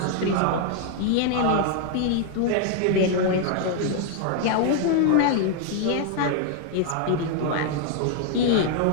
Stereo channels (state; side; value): different; both; correlation 0.00